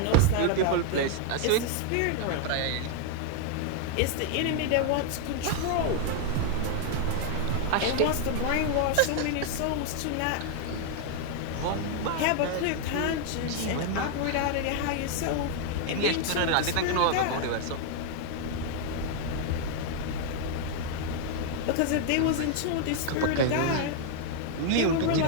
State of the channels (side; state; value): both; different; correlation 0.00